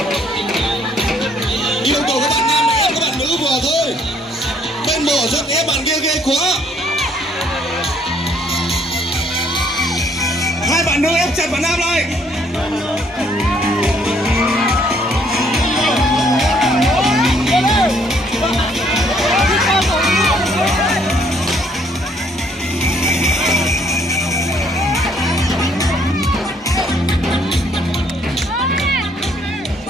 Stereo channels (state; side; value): normal; both; correlation 0.65